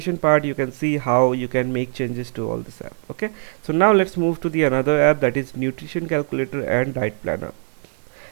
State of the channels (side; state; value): left; silent; 65 dB below the other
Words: part you can see how you can make changes to all this app. Okay, so now let's move to the another app, that is nutrition calculator and diet planner.